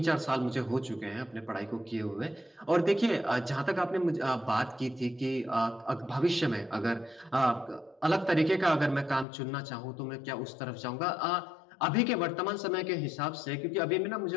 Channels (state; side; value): drops out; right; at 9.2 s